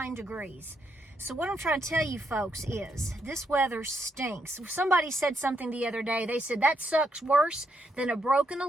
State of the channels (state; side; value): normal; both; correlation 0.78